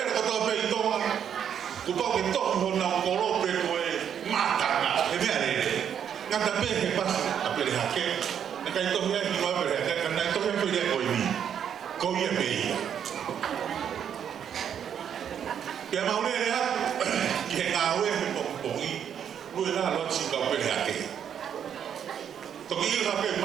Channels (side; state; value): left; quieter; 8.6 dB